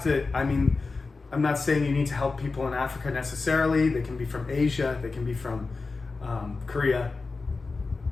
to, I'm not saying you need to help people in Africa necessarily. They can be from Asia, they can be from Korea,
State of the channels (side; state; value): right; quieter; 4.0 dB